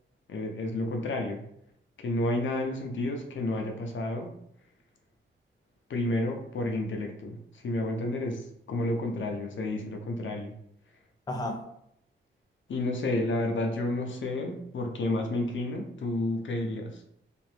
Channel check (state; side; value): normal; both; correlation 0.59